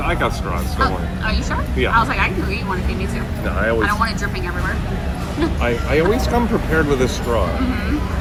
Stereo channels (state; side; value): identical; both; correlation 1.00